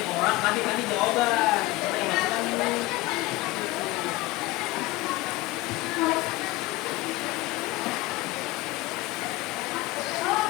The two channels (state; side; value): quieter; right; 19.9 dB